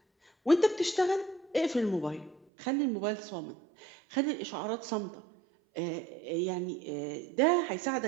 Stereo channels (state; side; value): drops out; left; at 2.5 s